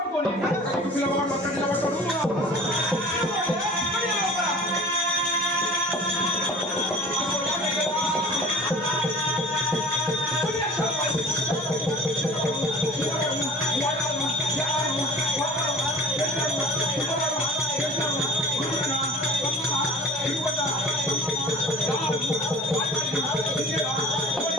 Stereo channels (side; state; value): both; normal; correlation 0.43